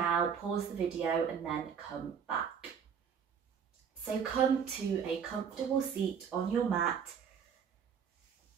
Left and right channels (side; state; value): left; quieter; 7.2 dB